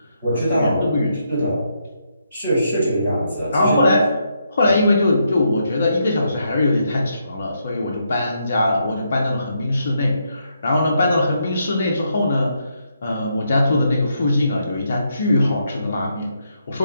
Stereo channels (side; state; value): both; inverted; correlation -0.79